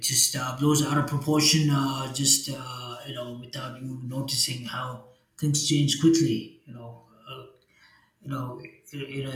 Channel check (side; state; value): both; identical; correlation 1.00